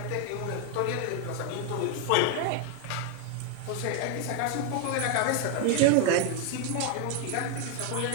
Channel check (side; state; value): both; different; correlation 0.00